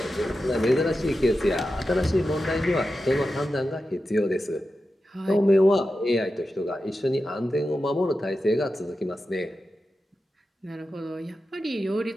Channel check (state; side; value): normal; both; correlation 0.92